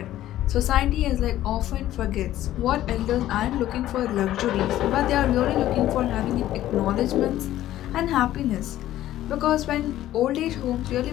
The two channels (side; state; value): right; quieter; 13.7 dB